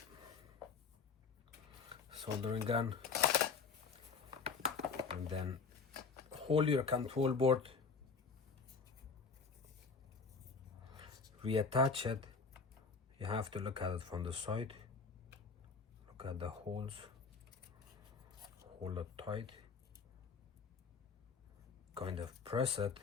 soldering gun. And then hold your control board. Reattach it. You have to look at it from the side. Look at the holes. Hold it tight, kind of press it,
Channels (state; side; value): quieter; right; 5.1 dB